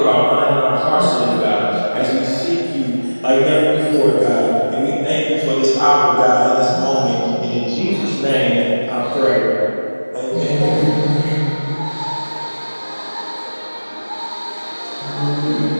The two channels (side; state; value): both; inverted; correlation -1.00